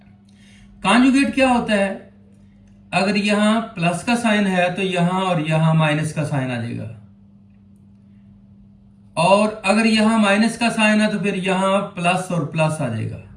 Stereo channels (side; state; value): both; identical; correlation 1.00